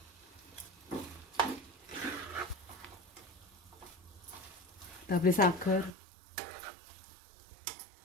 तर आपली साखर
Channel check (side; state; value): left; drops out; at 5.9 s